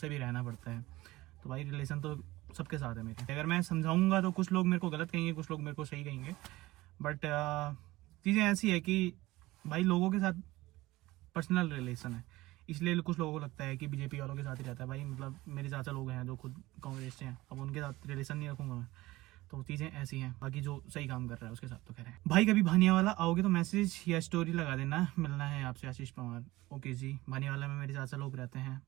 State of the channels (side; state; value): left; quieter; 18.8 dB